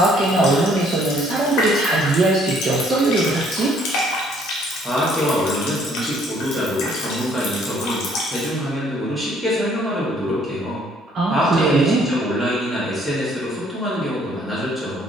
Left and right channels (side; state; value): both; normal; correlation 0.62